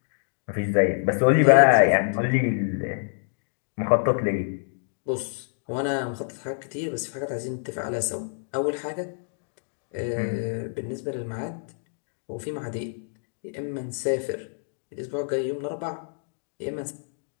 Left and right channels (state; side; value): silent; right; digital silence